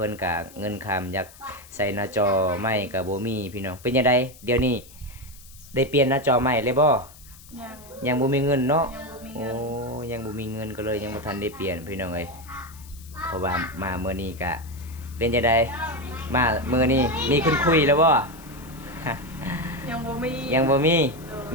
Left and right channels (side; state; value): left; noise; hiss, 21 dB below the sound